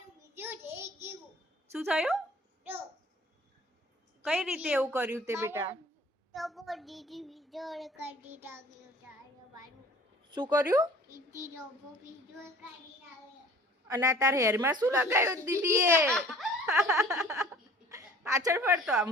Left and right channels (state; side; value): normal; both; correlation 0.49